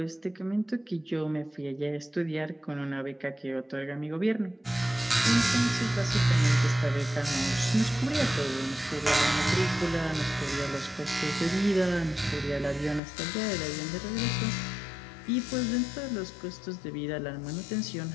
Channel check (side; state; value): right; drops out; at 13.0 s